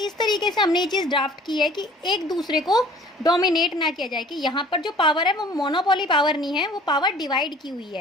इस तरीके से हमने ये चीज़ ड्राफ्ट की है कि एक दूसरे को डोमिनेट ना किया जाए, कि यहाँ पर जो पावर है वो मोनोपोली पावर नहीं है, वो पावर डिवाइड की हुई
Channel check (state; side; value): normal; both; correlation 0.50